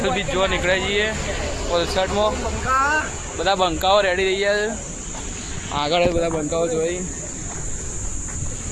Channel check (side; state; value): both; identical; correlation 1.00